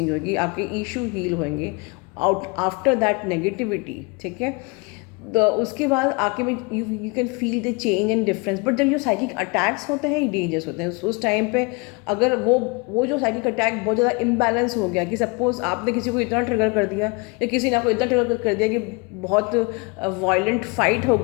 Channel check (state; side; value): quieter; right; 28.7 dB